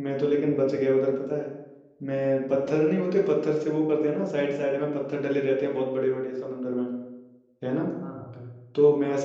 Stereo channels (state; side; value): identical; both; correlation 1.00